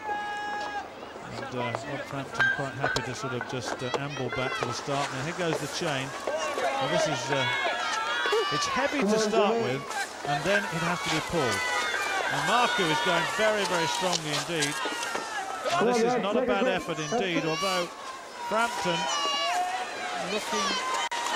And Rob Frampton quite happy to sort of just amble back to the start. Now here goes the chain. Well, this is, it's heavy to start with, and then it has to be pulled. And Maru is going very, very strongly indeed. And this is not a bad effort indeed, although Frampton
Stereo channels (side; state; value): both; identical; correlation 1.00